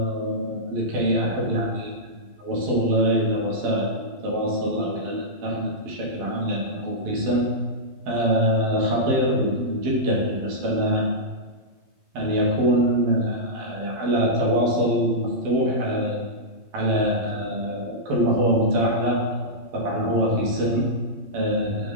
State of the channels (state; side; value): late; left; 12 ms